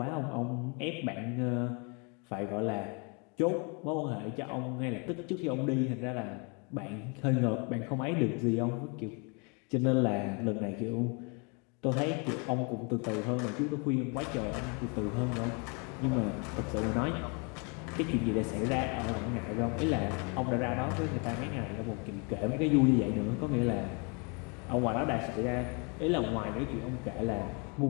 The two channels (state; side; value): quieter; right; 33.9 dB